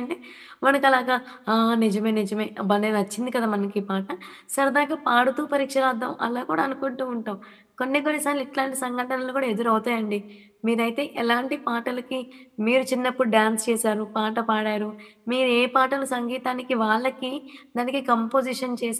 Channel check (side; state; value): both; identical; correlation 1.00